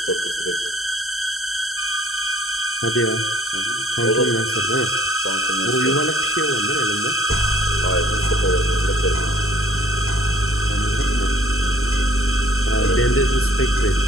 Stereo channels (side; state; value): right; late; 0.63 ms